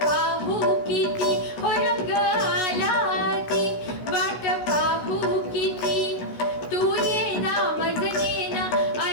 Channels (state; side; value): late; right; 16 ms